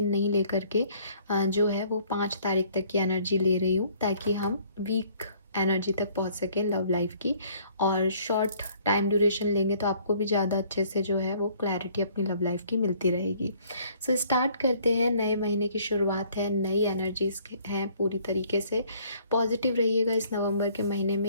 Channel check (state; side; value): inverted; both; correlation -0.60